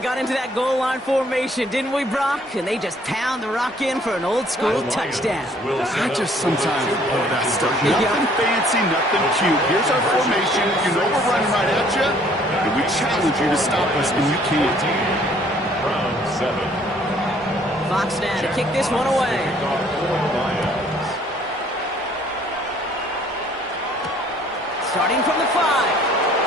got into that goal line formation, didn't we, Brock? And they just pound the rock in for an old-school touchdown. I just sometimes love that stuff. Nothing fancy, nothing cute. Here's our formation. You know we're running right at you, and we challenge you to stop us, and you can't. Round 7. Fox now to kick this one away. Starting from the 5.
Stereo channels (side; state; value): both; normal; correlation 0.60